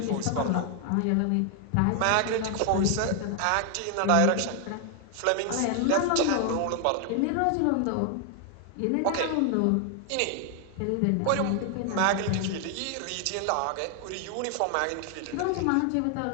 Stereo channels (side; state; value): both; different; correlation 0.00